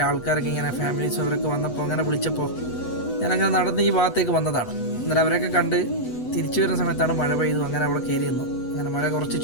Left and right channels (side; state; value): right; late; 8.0 ms